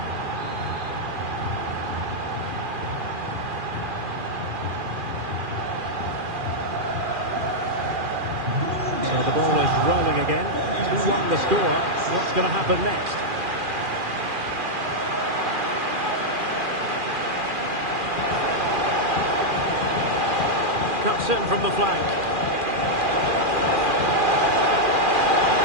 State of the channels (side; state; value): left; late; 2.4 ms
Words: So the ball is rolling again. 2-1 the score. What's going to happen next? Cuts in from the flank.